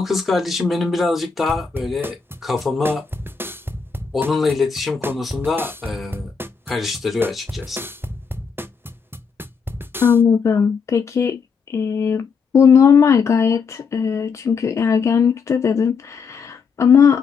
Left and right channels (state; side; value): quieter; right; 5.7 dB